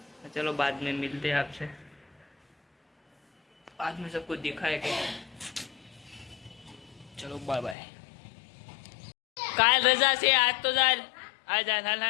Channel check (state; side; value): drops out; right; at 7.8 s